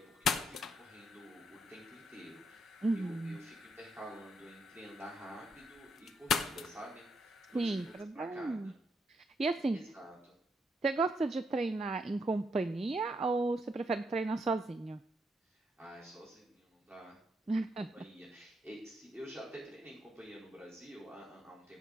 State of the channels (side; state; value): both; normal; correlation 0.77